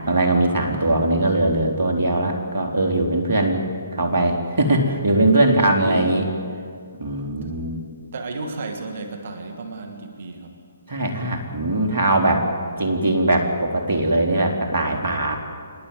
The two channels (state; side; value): inverted; both; correlation -0.66